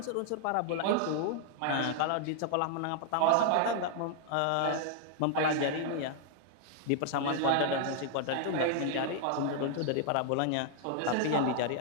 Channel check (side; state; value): both; different; correlation -0.01